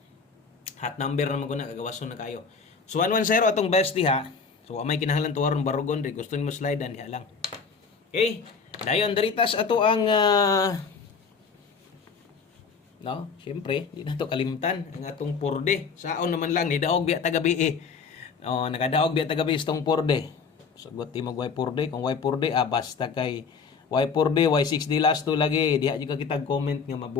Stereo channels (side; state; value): right; quieter; 5.4 dB